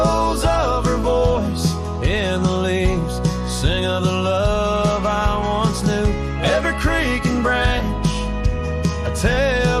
of her voice in the leaves sing of the love I once knew. Every creek and branch a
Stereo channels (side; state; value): both; identical; correlation 1.00